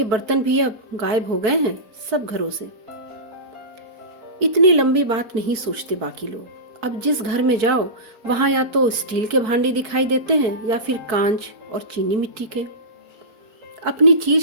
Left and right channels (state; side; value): late; left; 4.6 ms